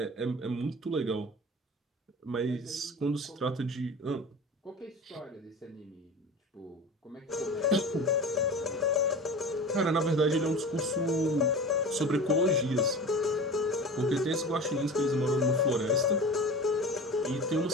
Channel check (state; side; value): normal; both; correlation 0.34